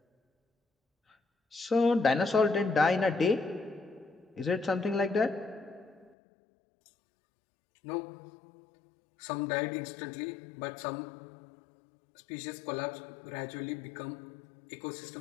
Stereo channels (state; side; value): drops out; right; at 6.2 s